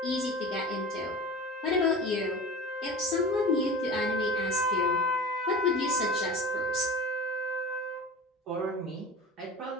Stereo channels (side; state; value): both; normal; correlation 0.35